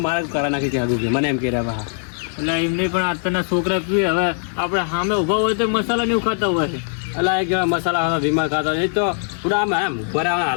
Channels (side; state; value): right; silent; 65 dB below the other